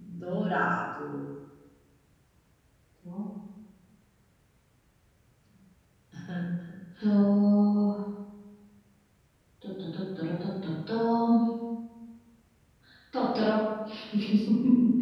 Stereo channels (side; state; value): both; identical; correlation 1.00